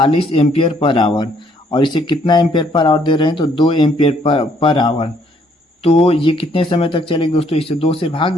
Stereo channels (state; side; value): normal; both; correlation 0.67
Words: एम्पियर पर आवर, और इसे कितना एम्पियर पर आवर दे रहे हैं तो 2 एम्पियर पर आवर। तो ये कितने समय तक चलेगी दोस्तों, इसे 2 से भाग